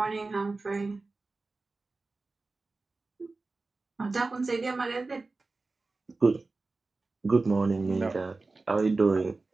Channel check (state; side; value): quieter; left; 3.6 dB